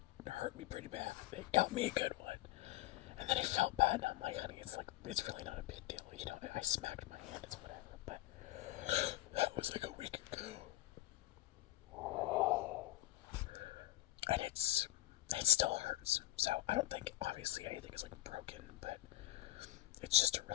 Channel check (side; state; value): right; quieter; 15.8 dB